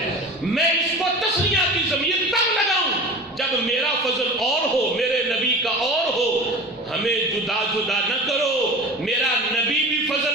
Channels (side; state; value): both; normal; correlation 0.35